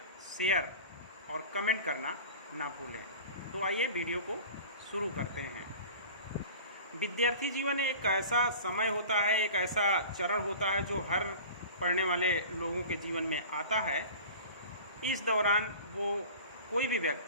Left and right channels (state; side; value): inverted; both; correlation -0.39